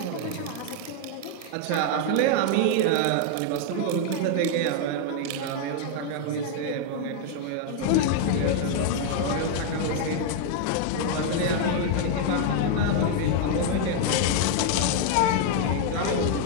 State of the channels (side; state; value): both; different; correlation 0.00